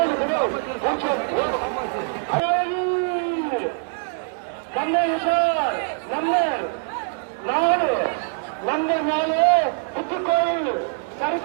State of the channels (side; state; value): left; silent; 60 dB below the other